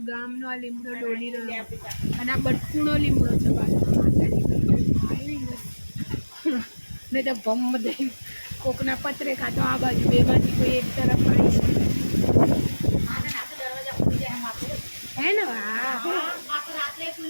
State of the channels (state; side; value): inverted; both; correlation -1.00